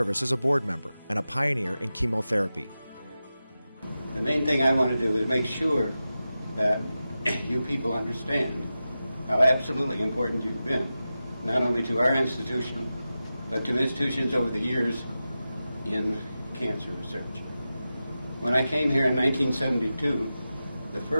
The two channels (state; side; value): inverted; both; correlation -0.93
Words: as a board member and a pioneer in chemotherapy. The main thing I want to do is make sure that you people understand how absolutely important you've been, not only to our institution, but to institutions over the years in cancer research. When I came here in 1972, the